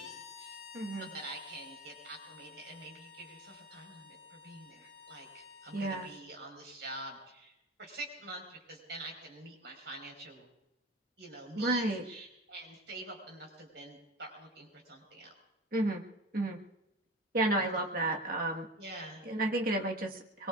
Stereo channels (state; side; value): normal; both; correlation 0.31